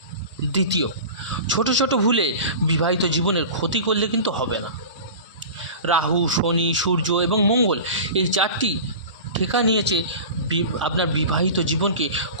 দ্বিতীয়, ছোট ছোট ভুলে বিবাহিত জীবনের ক্ষতি করলে কিন্তু হবে না। রাহু, শনি, সূর্য এবং মঙ্গল এই 4টি ঠেকা নিয়েছে আপনার বিবাহিত জীবনকে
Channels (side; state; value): both; inverted; correlation -0.34